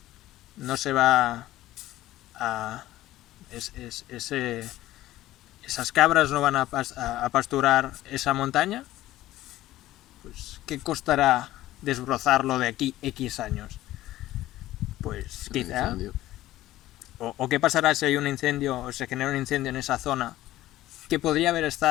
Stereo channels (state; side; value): quieter; right; 15.3 dB